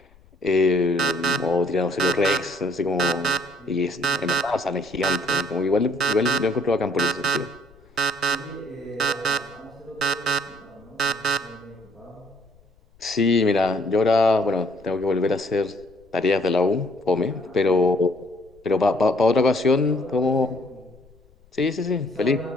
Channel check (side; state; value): left; noise; rumble, 29 dB below the sound